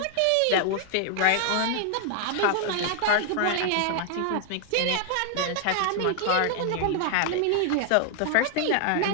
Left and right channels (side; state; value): both; different; correlation 0.00